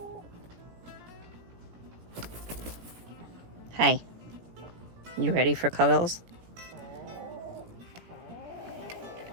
Hi. You ready for cuddles?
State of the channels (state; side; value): late; left; 17 ms